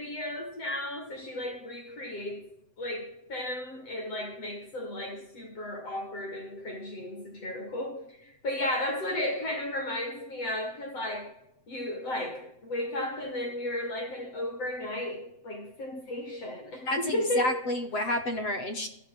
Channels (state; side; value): late; right; 7.8 ms